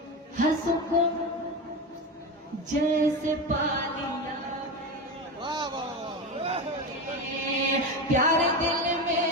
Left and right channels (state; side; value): normal; both; correlation 0.20